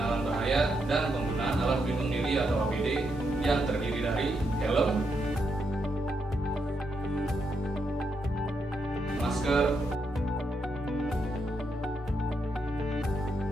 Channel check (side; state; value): both; normal; correlation 0.81